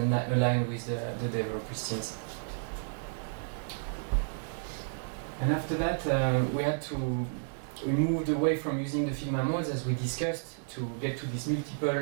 aligned with the developers teams. And after that, we moved away from using the Figma modes as we discussed to get to these multiple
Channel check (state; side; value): silent; left; digital silence